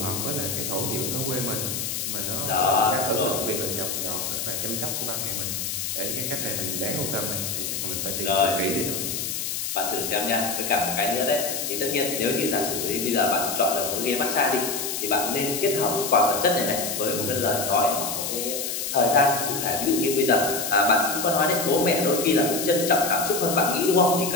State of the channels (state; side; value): noise; left; hiss, 3 dB below the sound